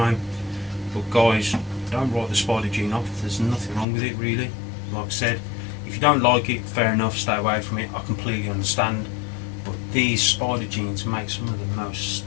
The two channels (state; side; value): drops out; right; at 3.9 s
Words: But guys, don't write the Spider Gene off. There's nothing wrong with it, really. Like I said, if you don't like it, fair enough, stay away from it. I completely understand. But these Spider Genes make some of the most